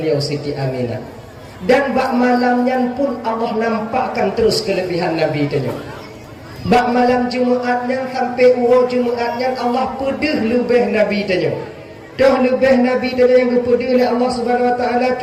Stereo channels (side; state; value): both; identical; correlation 1.00